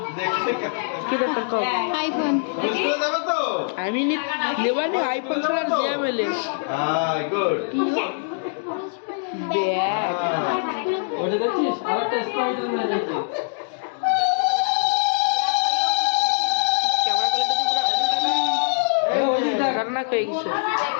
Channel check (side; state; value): right; silent; digital silence